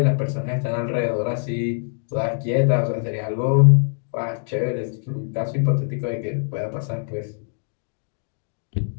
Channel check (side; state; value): right; silent; digital silence